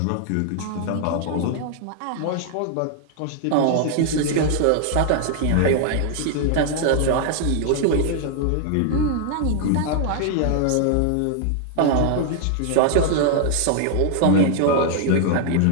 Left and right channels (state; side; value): different; both; correlation 0.00